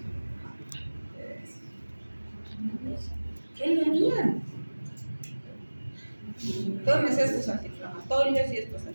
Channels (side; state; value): both; inverted; correlation -1.00